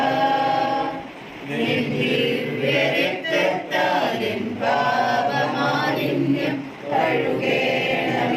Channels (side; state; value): both; identical; correlation 1.00